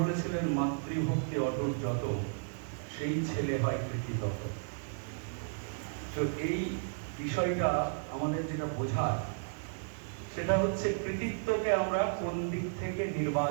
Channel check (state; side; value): silent; left; digital silence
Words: বলেছিলেন, মাতৃভক্তি অটুট যত, সেই ছেলে হয় কৃতিতত। তো এই বিষয়টা আমাদের যেটা বোঝার, সেটা হচ্ছে কৃতিত্বকে আমরা কোন দিক থেকে